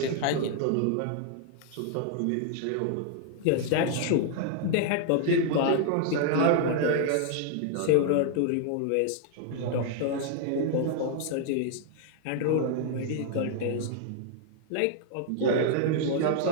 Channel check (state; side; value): different; both; correlation 0.00